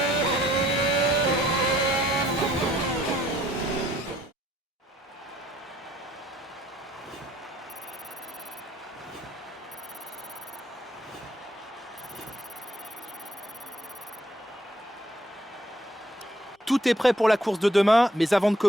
Tout est prêt pour la course de demain, mais avant de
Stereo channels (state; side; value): normal; both; correlation 0.66